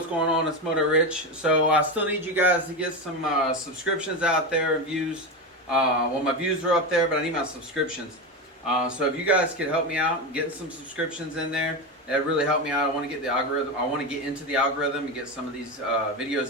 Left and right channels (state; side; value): normal; both; correlation 0.17